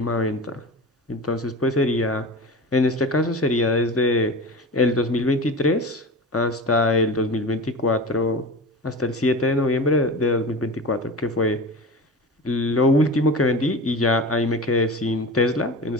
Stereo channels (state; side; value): normal; both; correlation 0.31